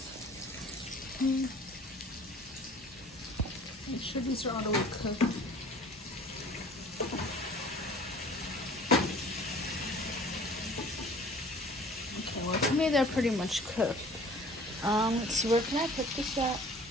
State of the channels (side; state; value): both; normal; correlation 0.49